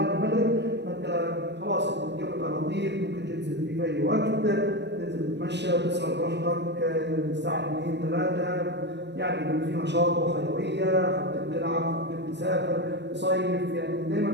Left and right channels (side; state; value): left; late; 0.50 ms